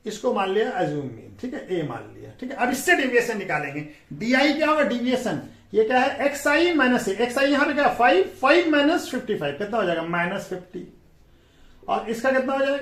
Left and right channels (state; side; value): identical; both; correlation 1.00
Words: इसको मान लिया एज्यूम मीन, ठीक है, ए मान लिया, ठीक है। अब इससे डिविएशन निकालेंगे। DI क्या होगा डिविएशन, ये क्या है XI माइनस ए, XI यहां पे क्या 5 माइनस 55 कितना हो जाएगा -50, और इसका कितना हो